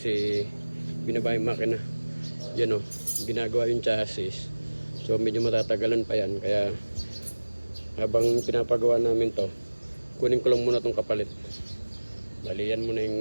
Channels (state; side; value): inverted; both; correlation -1.00